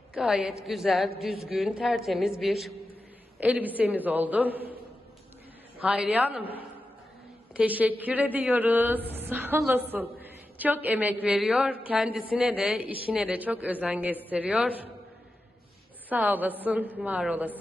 Gayet güzel, düzgün, tertemiz bir elbisemiz oldu. Hayriye Hanım, teşekkür ediyoruz. Sağ olasın. Çok emek veriyor. Kendisine de, işine de çok özen gösteriyor. Sağ olasın, var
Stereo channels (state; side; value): normal; both; correlation 0.91